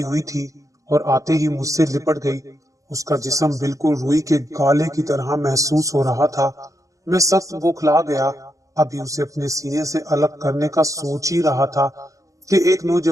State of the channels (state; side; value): late; left; 0.16 ms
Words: हुई थी और आते ही मुझसे लिपट गई। उसका जिस्म बिल्कुल रुई के गाले की तरह महसूस हो रहा था। मैं सख्त बौखला गया। अभी उसे अपने सीने से अलग करने का सोच ही रहा था कि एक